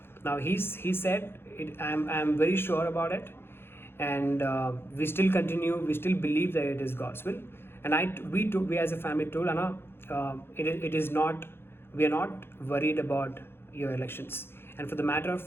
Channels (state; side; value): late; right; 0.11 ms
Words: Now he said, I'm very sure about it, and we still believe that it is God's will. And we as a family told Anna, it is not, we are not worried about your elections. And for the matter of